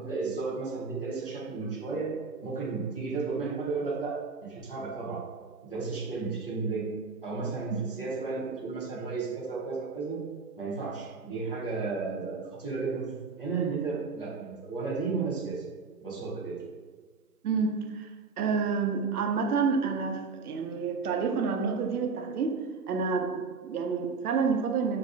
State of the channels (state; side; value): quieter; left; 4.6 dB